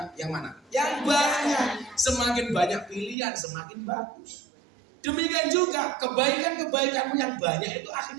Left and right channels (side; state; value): left; drops out; at 3.2 s